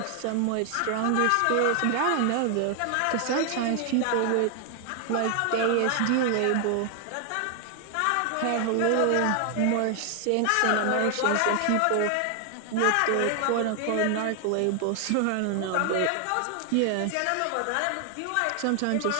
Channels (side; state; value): both; different; correlation 0.00